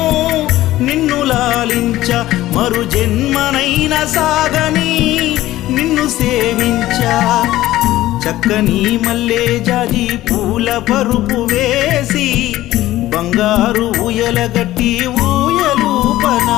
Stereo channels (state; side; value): quieter; right; 15.5 dB